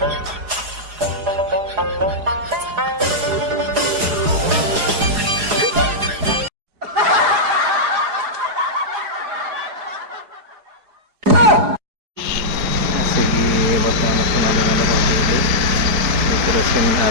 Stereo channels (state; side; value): late; left; 4.8 ms